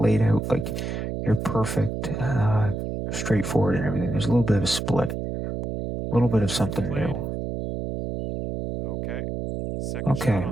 laid out like you're perfect, straightforward and everything. There's a little bit of a split. A little bit of something new. Okay. Second shot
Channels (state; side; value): noise; right; hum, 4 dB below the sound